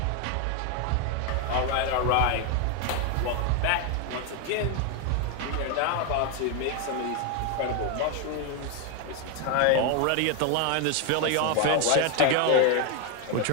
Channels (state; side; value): different; both; correlation 0.01